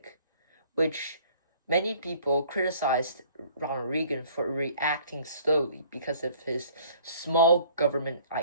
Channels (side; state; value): both; inverted; correlation -0.56